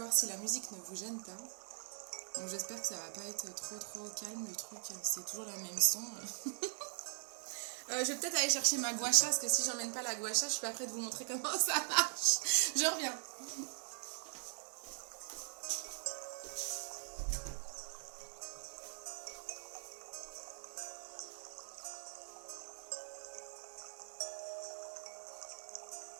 si la musique ne vous gêne pas. Bon, j'espère que ça va pas être trop calme le truc. C'est toujours la même son. Je vais peut-être aller chercher ma gua sha parce que si j'emmène pas la gua sha, je suis pas prête de vous montrer comment ça marche. Je reviens.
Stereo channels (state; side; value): silent; left; 50 dB below the other